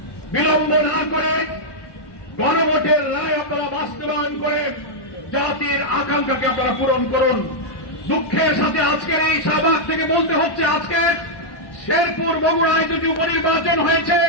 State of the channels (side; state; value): right; late; 1.1 ms